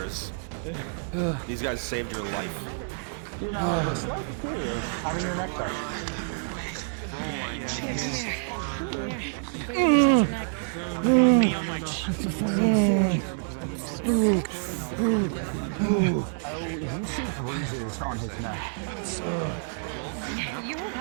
These guys saved your life. You know, a slight fear of having your neck touched. You see bruises on his neck. You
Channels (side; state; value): left; silent; digital silence